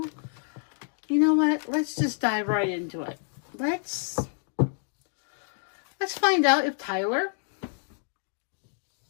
you know what? Let's just dive right into it. Let's find out if Tyler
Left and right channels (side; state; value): right; silent; 59 dB below the other